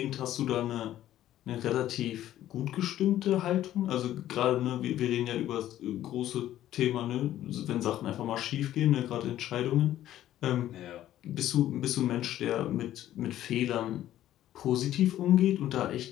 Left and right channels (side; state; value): right; quieter; 12.9 dB